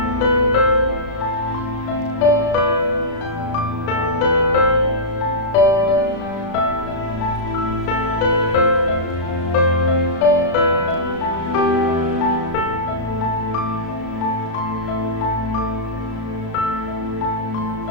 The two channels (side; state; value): right; late; 35 ms